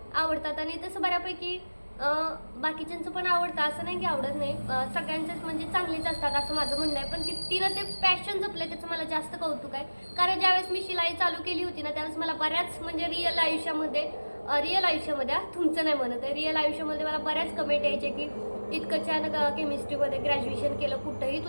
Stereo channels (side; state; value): both; inverted; correlation -1.00